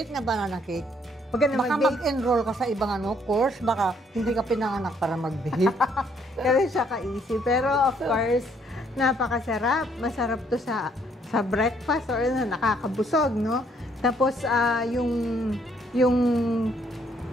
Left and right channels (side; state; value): both; normal; correlation 0.67